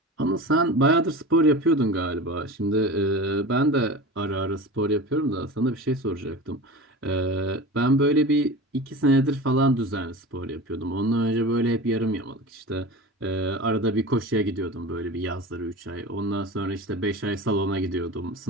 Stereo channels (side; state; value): both; normal; correlation 0.32